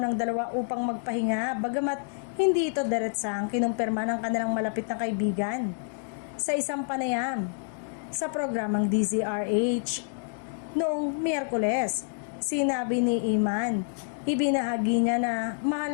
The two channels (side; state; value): right; silent; digital silence